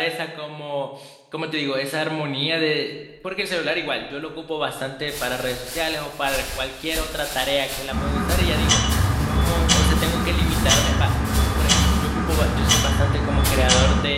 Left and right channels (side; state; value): both; identical; correlation 1.00